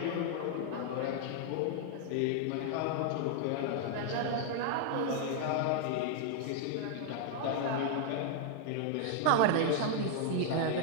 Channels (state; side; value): different; both; correlation 0.00